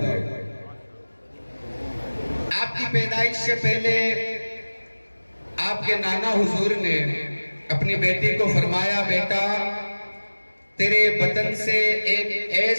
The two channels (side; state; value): both; inverted; correlation -1.00